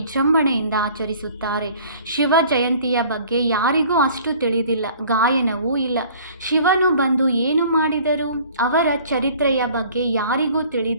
ಆಚರಿಸುತ್ತಾರೆ. ಶಿವ ಜಯಂತಿಯ ಬಗ್ಗೆ ಯಾರಿಗೂ ಅಷ್ಟು ತಿಳಿದಿಲ್ಲ, ಗಾಯನವೂ ಇಲ್ಲ. ಶಿವನು ಬಂದು ಏನು ಮಾಡಿದರು? ಅವರ ಚರಿತ್ರೆಯ ಬಗ್ಗೆ ಯಾರಿಗೂ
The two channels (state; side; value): inverted; both; correlation -0.51